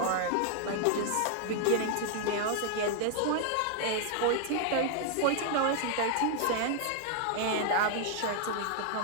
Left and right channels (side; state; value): both; different; correlation 0.00